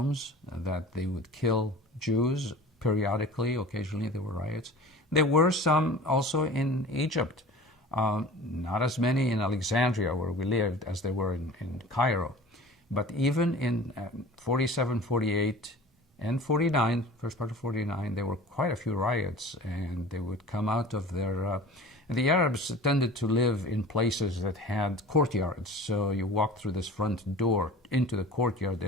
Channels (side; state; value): both; normal; correlation 0.41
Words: that they would kill Jews periodically. Occasionally there were riots. There were some also in Egypt. Not as many in Alexandria, where we lived, as there were in Cairo. But even in 47, 48, And 49, first part of 49, there were quite a few riots, and they would come out of their... the Arabs tended to live in places that had courtyards, so you walk through this front door into the courtyard,